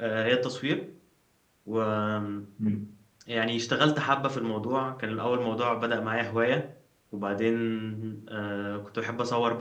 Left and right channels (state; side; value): identical; both; correlation 1.00